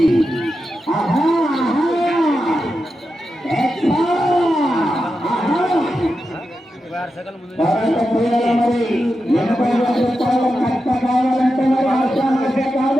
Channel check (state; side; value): normal; both; correlation 0.89